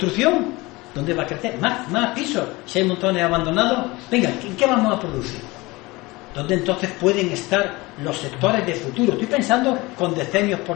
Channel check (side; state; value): right; quieter; 22.4 dB